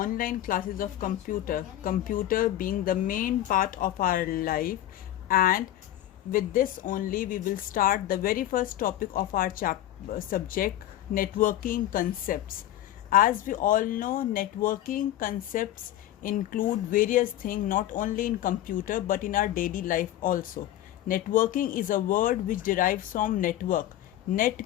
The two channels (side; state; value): right; quieter; 13.2 dB